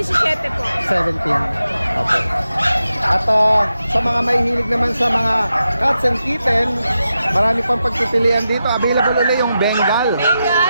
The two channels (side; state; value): both; inverted; correlation -0.89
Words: po. 17. Okay. At sa mga mahihilig naman sa mga cats and kitten, marami pang pagpipilian dito. Available ulit yung Bengal.